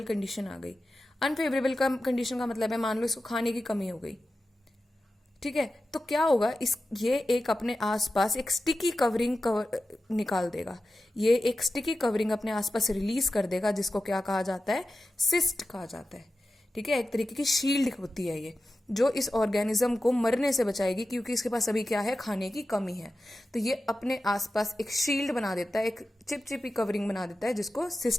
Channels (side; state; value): both; normal; correlation 0.93